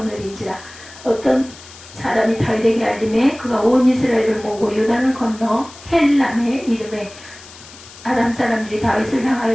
어떤 사람이 다윗에게 알림해 그가 온 이스라엘을 모으고 요단을 건너 헬람에 이르매 아람 사람들이 다윗을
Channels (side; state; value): left; noise; hiss, 19 dB below the sound